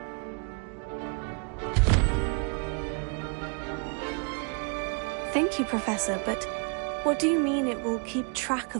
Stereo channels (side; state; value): left; quieter; 36.0 dB